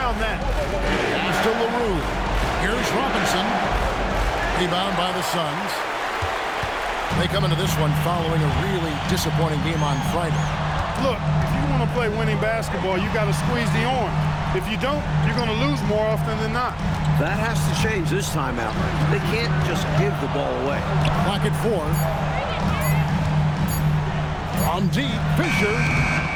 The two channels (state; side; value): identical; both; correlation 1.00